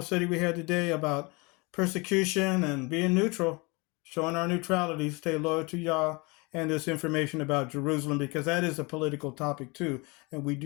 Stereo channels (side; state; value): right; quieter; 27.6 dB